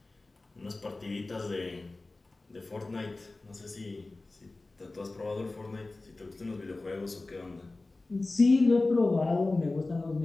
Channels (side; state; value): right; quieter; 3.2 dB